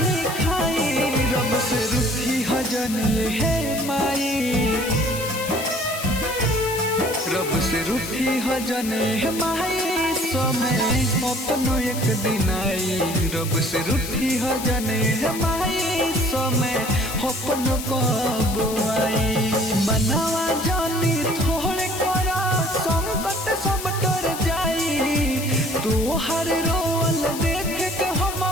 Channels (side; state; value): left; noise; hiss, 9 dB below the sound